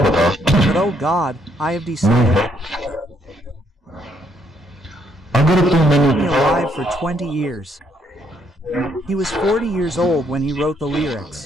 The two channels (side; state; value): both; normal; correlation 0.71